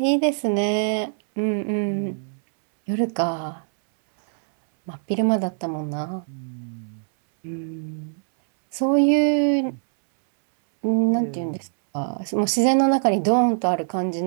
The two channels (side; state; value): left; silent; 64 dB below the other